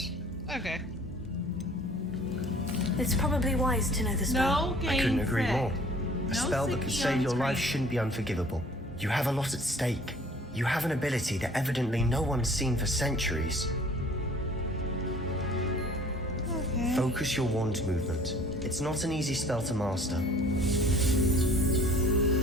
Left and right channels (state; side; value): normal; both; correlation 0.52